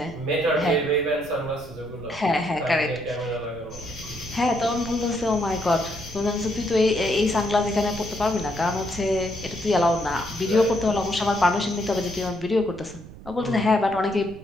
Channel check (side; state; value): right; noise; rumble, 17 dB below the sound